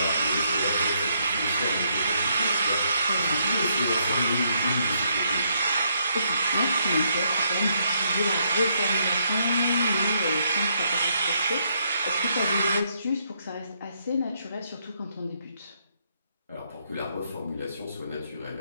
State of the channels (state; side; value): inverted; both; correlation -0.74